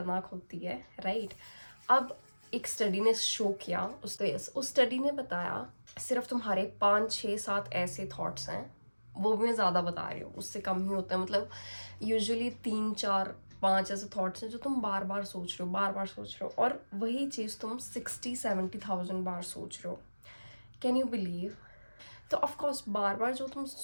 होती है, राइट? अब एक स्टडी ने शो किया, उस स्टडी ने बताया सिर्फ तुम्हारे 5-6-7 ऐसे थॉट्स हैं, वो भी मैं ज़्यादा बता रही हूँ, उससे कम ही होता है। मतलब यूजुअली 3-4-5 ऐसे थॉट्स हैं जो तुम बार बार सोच रहे हो, बार बार सोच रहे हो, और वही चीज़ तुम 60-70,000 बार सोच रहे हो। Can you believe? तो ऑफकोर्स बार बार जो तुम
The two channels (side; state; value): both; inverted; correlation -1.00